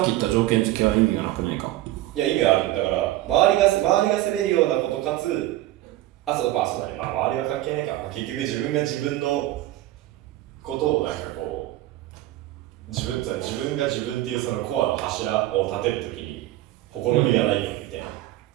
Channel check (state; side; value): quieter; left; 15.6 dB